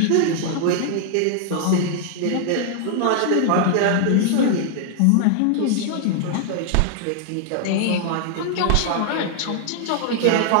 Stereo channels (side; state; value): both; different; correlation 0.00